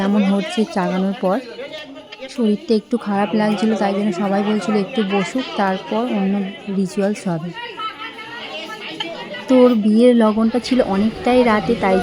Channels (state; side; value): identical; both; correlation 1.00